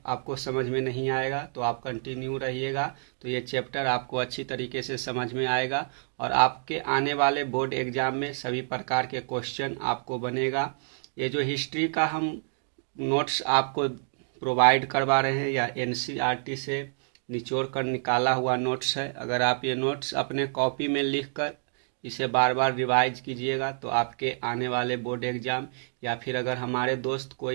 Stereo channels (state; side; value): silent; left; digital silence